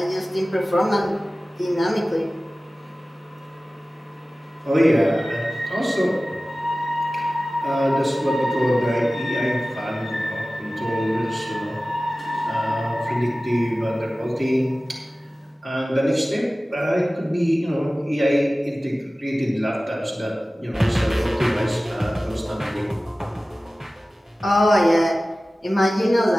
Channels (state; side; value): normal; both; correlation 0.97